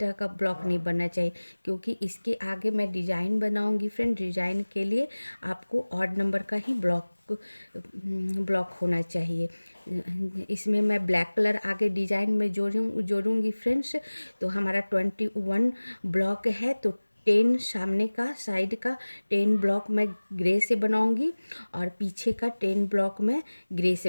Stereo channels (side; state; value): both; inverted; correlation -1.00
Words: का ब्लॉक नहीं बनना चाहिए, क्योंकि इसके आगे मैं डिज़ाइन बनाऊंगी फ्रेंड। डिज़ाइन के लिए आपको ऑड नंबर का ही ब्लॉक होना चाहिए। इसमें मैं ब्लैक कलर आगे डिज़ाइन में जोड़ूंगी फ्रेंड्स। तो हमारा 21 ब्लॉक है, तो 10 सामने का साइड का 10 ब्लॉक मैं ग्रे से बनाऊंगी, और पीछे का 10 ब्लॉक मैं ग्रे